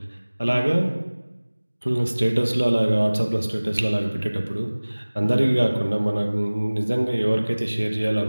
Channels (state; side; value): inverted; both; correlation -1.00